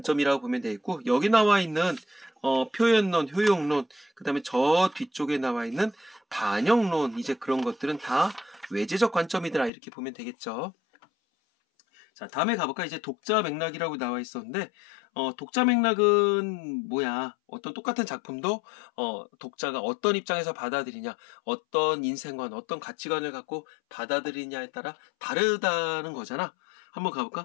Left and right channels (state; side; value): drops out; right; at 9.7 s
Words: 보면 되겠고, 여기 나와 있는 표현론, 효용론, 그 다음에 저 뒤쪽에 나와 있는 반영론, 이제 그런 것들은 다 외재적 관점이더라, 이렇게 보면 되겠죠. 자, 다음에 가볼까? 이제 독자 맥락이라고 나와 있었는데, 독자 맥락은 뭐야? 어떤 똑같은 작품도, 독자가 어떤 입장에서 받아들이냐, 어떤 인생관, 어떤 가치관을 갖고 받아들이냐에 따라 다르다는 거잖아. 한번